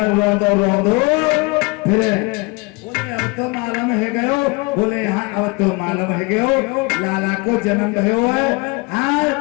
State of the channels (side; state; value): right; quieter; 27.6 dB